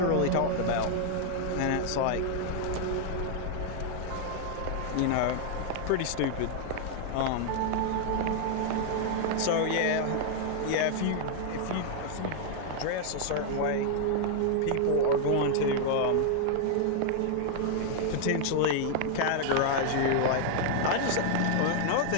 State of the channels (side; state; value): both; different; correlation 0.00